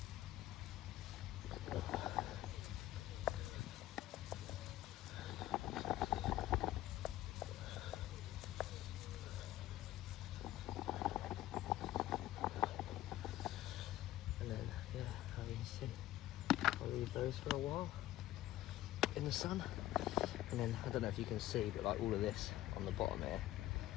And then, yeah, how you can see, I'll leave those for a while in the sun. And then, I don't know if you can see, but like all of this on the bottom here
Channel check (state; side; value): quieter; right; 14.7 dB